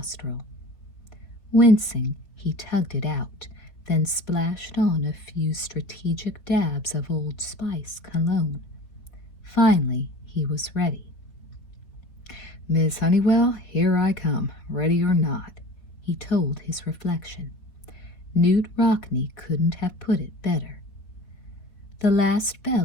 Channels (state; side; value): late; right; 4.1 ms